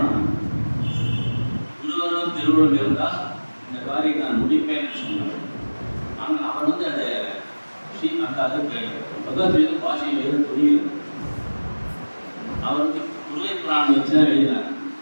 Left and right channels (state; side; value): inverted; both; correlation -1.00